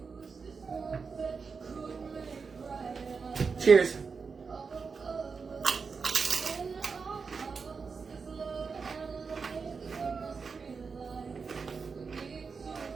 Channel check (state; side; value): quieter; left; 5.1 dB